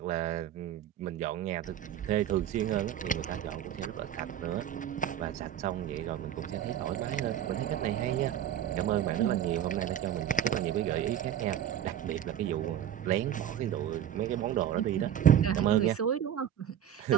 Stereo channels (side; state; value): left; quieter; 10.4 dB